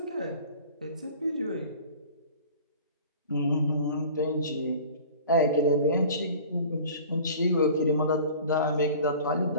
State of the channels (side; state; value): both; inverted; correlation -0.43